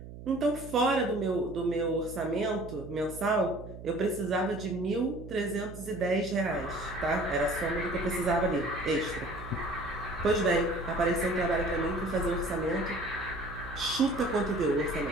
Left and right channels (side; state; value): right; noise; hum, 13 dB below the sound